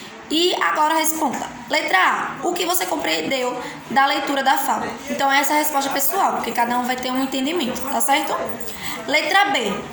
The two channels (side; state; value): both; identical; correlation 1.00